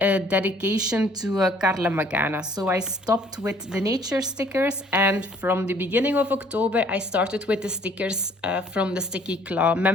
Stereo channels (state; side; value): normal; both; correlation 0.58